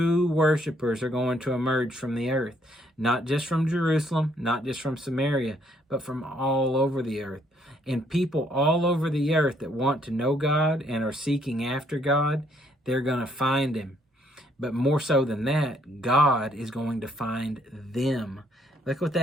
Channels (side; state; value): both; normal; correlation 0.68